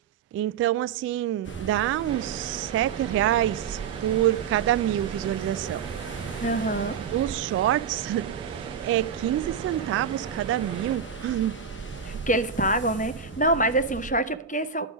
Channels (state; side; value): quieter; left; 6.8 dB